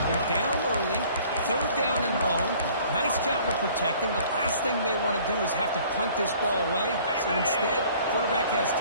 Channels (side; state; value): both; inverted; correlation -0.53